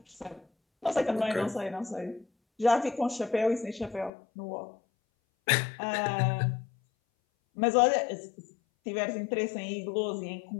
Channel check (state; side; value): drops out; right; at 4.1 s